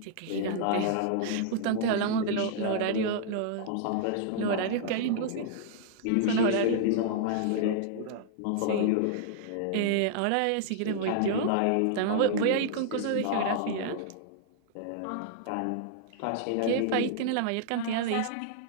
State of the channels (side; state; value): both; different; correlation -0.01